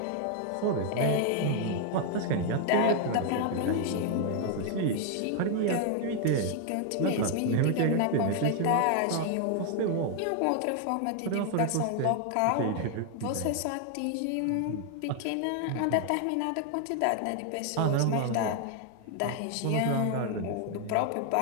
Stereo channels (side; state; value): both; different; correlation 0.00